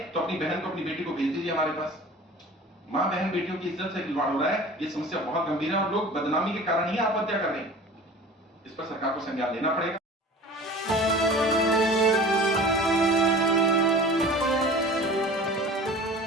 तो अपनी बहन को अपनी बेटी को भेज दीजिए हमारे पास। मां बहन बेटियों की इज्जत से खिलवाड़ हो रहा है, ये समस्या बहुत गंभीर है और लोग बदनामी के कारण ही आत्महत्या कर रहे हैं। इस पर सरकार को संज्ञान लेना पड़ेगा।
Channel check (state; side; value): normal; both; correlation 0.41